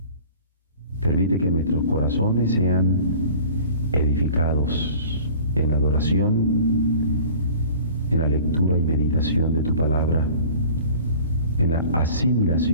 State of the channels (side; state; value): both; inverted; correlation -0.45